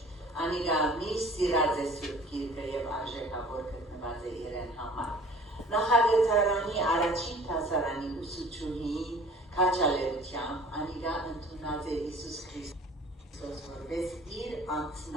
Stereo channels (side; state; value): both; normal; correlation 0.48